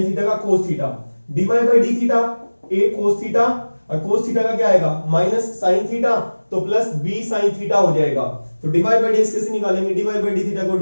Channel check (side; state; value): both; inverted; correlation -1.00